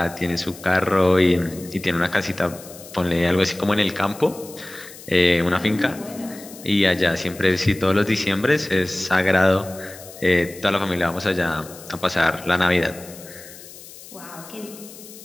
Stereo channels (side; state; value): left; noise; hiss, 17 dB below the sound